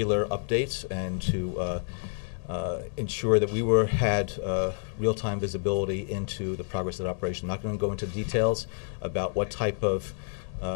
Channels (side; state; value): right; silent; digital silence